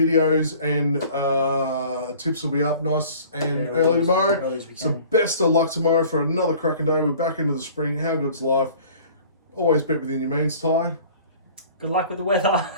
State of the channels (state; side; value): inverted; both; correlation -0.49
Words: and tips will be up nice and early tomorrow. So best of luck tomorrow for another cracking day. We're back into the spring. How good's life? Always bet within your means, Ty. Good luck with the weather.